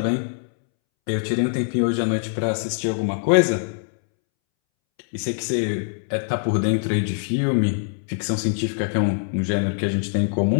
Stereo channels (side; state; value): right; silent; 63 dB below the other